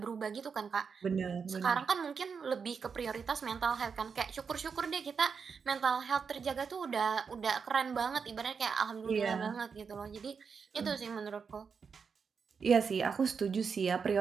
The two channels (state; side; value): quieter; left; 5.9 dB